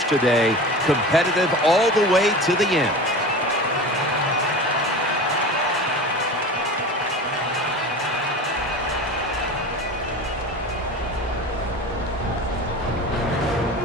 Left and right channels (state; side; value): normal; both; correlation 0.33